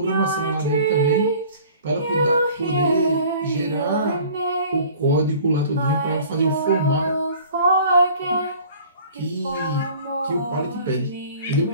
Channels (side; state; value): both; inverted; correlation -0.48